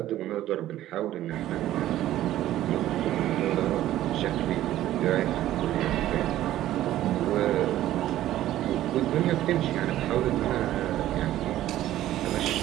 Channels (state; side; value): quieter; left; 13.7 dB